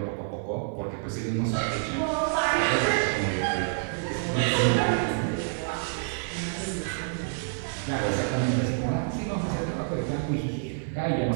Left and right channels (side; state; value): left; silent; 56 dB below the other